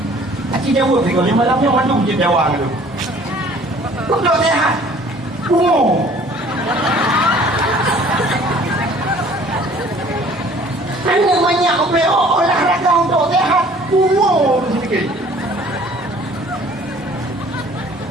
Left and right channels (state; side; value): normal; both; correlation 0.53